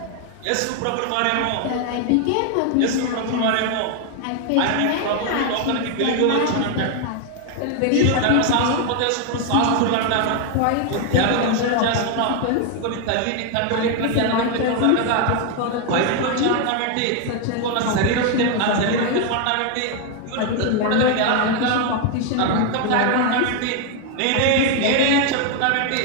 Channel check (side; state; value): both; different; correlation 0.01